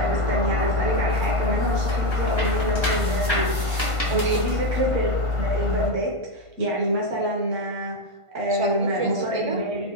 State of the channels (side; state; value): left; late; 1.5 ms